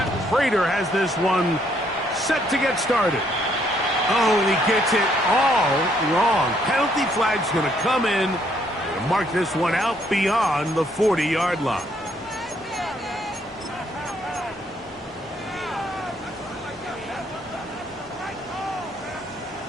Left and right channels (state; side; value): normal; both; correlation 0.69